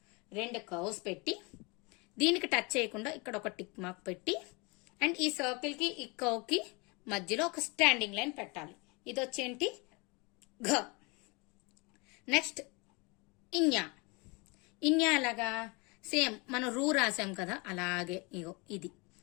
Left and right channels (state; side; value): quieter; right; 28.6 dB